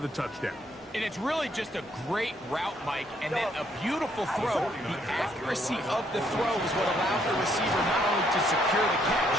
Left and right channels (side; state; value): both; normal; correlation 0.70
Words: touchdown. And it's really just a great route, Mike, and then a beautiful throw. The accuracy of the throw is what allowed the receiver not only to secure the